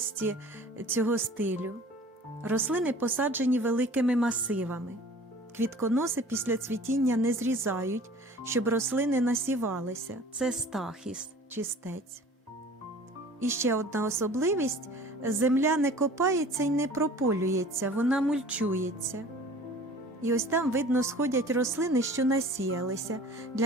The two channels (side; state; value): both; normal; correlation 0.46